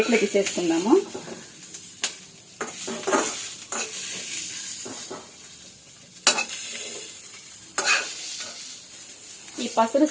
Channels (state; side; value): identical; both; correlation 1.00